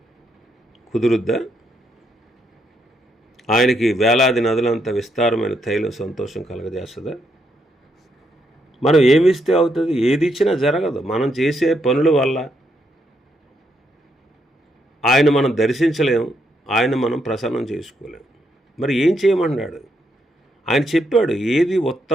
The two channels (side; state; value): both; normal; correlation 0.77